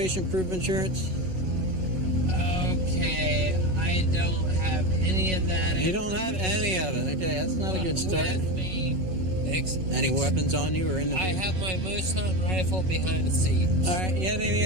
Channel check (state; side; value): late; left; 5.4 ms